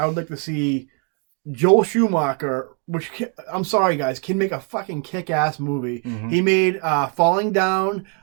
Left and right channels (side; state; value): left; quieter; 39.8 dB